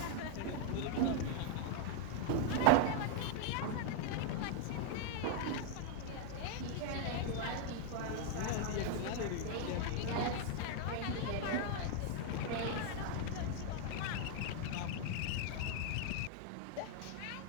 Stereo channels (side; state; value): both; different; correlation 0.00